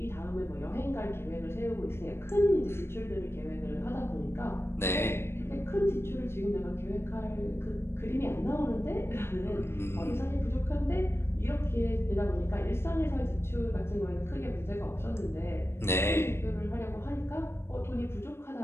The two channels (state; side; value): late; right; 0.12 ms